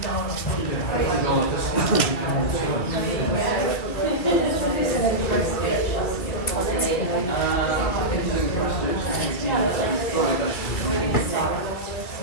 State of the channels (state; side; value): late; right; 2.7 ms